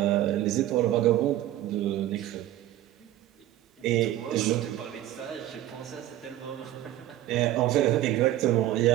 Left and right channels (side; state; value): left; quieter; 13.8 dB